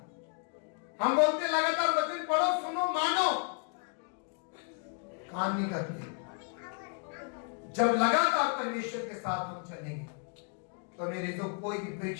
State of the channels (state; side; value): quieter; right; 39.6 dB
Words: हम बोलते हैं लगातार वचन पढ़ो, सुनो, मानो, काम नहीं करते। जब लगातार परमेश्वर के साथ हम चलेंगे तो मेरे जो कोई भी